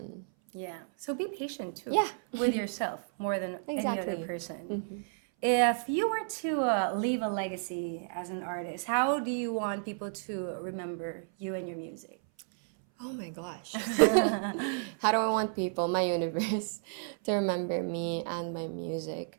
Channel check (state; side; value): silent; left; 57 dB below the other